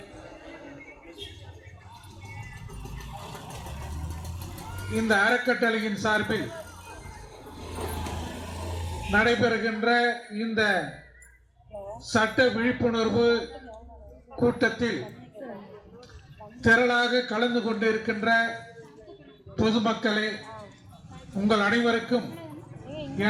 இந்த அறக்கட்டளையின் சார்பில் நடைபெறுகின்ற இந்த சட்ட விழிப்புணர்வு கூட்டத்தில் திரளாக கலந்து கொண்டிருக்கின்ற பொதுமக்களே, உங்கள் அனைவருக்கும்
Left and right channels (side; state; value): both; identical; correlation 1.00